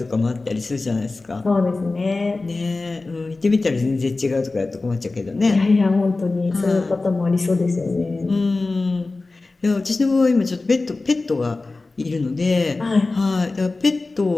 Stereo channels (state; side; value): quieter; right; 3.4 dB